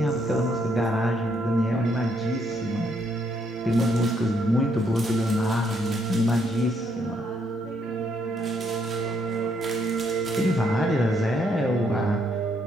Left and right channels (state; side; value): normal; both; correlation 0.72